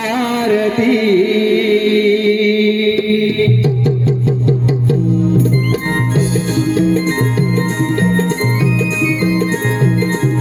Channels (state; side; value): identical; both; correlation 1.00